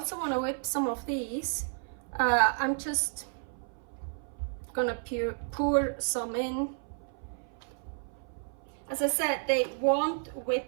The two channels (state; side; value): silent; left; 57 dB below the other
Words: want to whip some of these. I'm just gonna pour some in. As I said, they won't